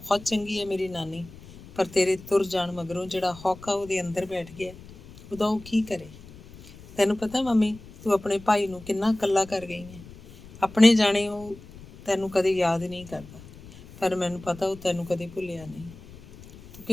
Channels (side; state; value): left; noise; rumble, 19 dB below the sound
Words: ਚੰਗੀ ਹੈ ਮੇਰੀ ਨਾਨੀ, ਪਰ ਤੇਰੇ ਤੁਰ ਜਾਣ ਮਗਰੋਂ ਜਿਹੜਾ ਹੌਕਾ ਉਹਦੇ ਅੰਦਰ ਬੈਠ ਗਿਆ, ਉਹਦਾ ਉਹ ਕੀ ਕਰੇ? ਤੈਨੂੰ ਪਤਾ ਮੰਮੀ, ਤੂੰ ਆਪਣੇ ਭਾਈ ਨੂੰ ਕਿੰਨਾ ਇਕੱਲਾ ਕਰ ਗਈ ਹੈ। ਆਪਣੇ ਜਾਣੇ ਉਹ ਤੈਨੂੰ ਕਦੇ ਯਾਦ ਨਹੀਂ ਕਰਦਾ, ਪਰ ਮੈਨੂੰ ਪਤਾ ਉਹ ਤੈਨੂੰ ਕਦੇ ਭੁੱਲਿਆ ਨਹੀਂ। ਤੂੰ